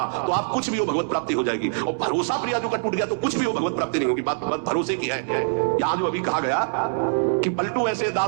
तो आप कुछ भी हो भगवत प्राप्ति हो जाएगी, और भरोसा प्रियाजू का टूट गया तो कुछ भी हो भगवत प्राप्ति नहीं होगी। बात भरोसे की है। यहां जो अभी कहा गया कि पलटू ऐसे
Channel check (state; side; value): silent; left; digital silence